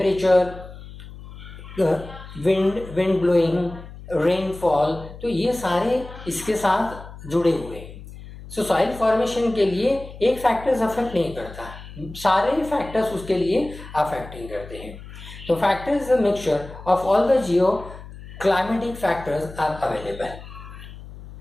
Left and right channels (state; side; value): noise; left; hum, 15 dB below the sound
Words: विंड ब्लोइंग, रेनफॉल, तो ये सारे इसके साथ जुड़े हुए हैं। सो सॉइल फॉर्मेशन के लिए एक फैक्टर्स अफेक्ट नहीं करता, सारे फैक्टर्स उसके लिए अफेक्टिंग करते हैं। तो factors is a mixture of all the geo climatic factors are available.